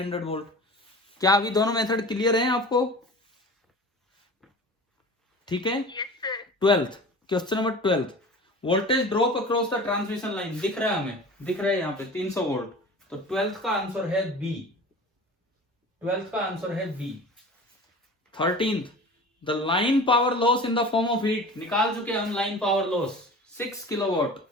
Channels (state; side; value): normal; both; correlation 0.38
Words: वोल्ट। क्या अभी दोनों मेथड क्लियर हैं आपको? ठीक है। 12th question number 12, voltage drop across the transmission line, दिख रहा है हमें, दिख रहा है यहाँ पे 300 वोल्ट, तो 12th का आंसर है बी। 12th का आंसर है B. 13th, the line power loss in the form of heat, निकाल चुके हम लाइन पावर लॉस 6 किलोवाट,